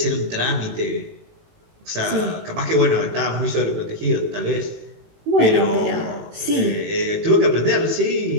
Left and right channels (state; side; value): late; left; 18 ms